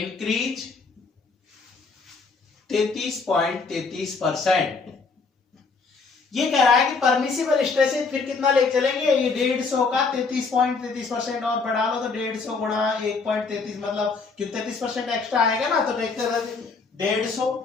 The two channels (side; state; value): right; quieter; 4.5 dB